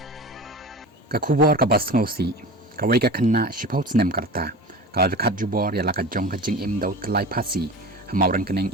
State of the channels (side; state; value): both; normal; correlation 0.33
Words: Ka khubor ka bas ngosi Kawei ka Khynnah shipau Snem karta ka rekat jubor ya la ka jong ka jing im dau tlai Phasi hamauran keneng